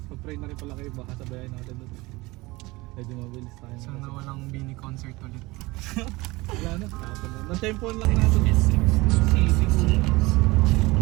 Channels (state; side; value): quieter; left; 22.0 dB